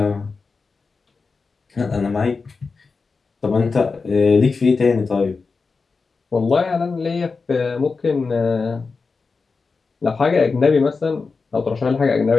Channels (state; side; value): quieter; right; 4.5 dB